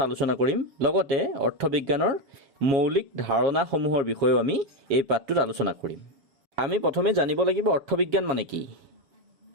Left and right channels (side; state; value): left; late; 7.3 ms